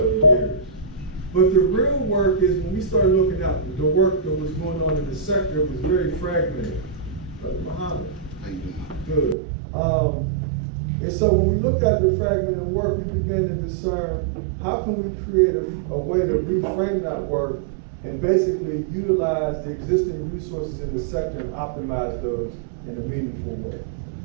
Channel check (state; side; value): drops out; left; at 9.3 s